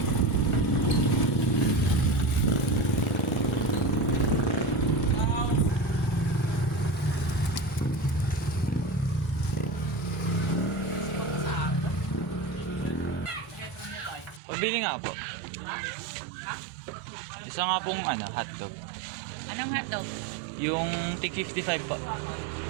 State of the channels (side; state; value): left; drops out; at 14.4 s